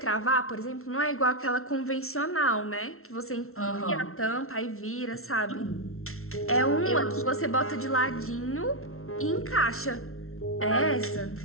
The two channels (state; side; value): late; right; 0.62 ms